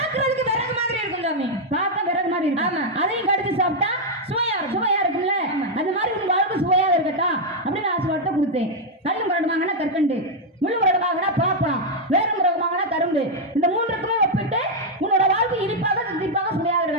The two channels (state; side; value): normal; both; correlation -0.01